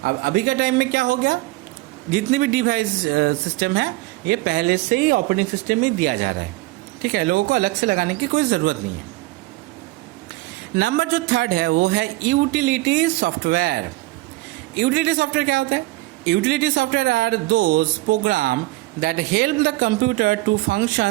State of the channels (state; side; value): quieter; left; 19.8 dB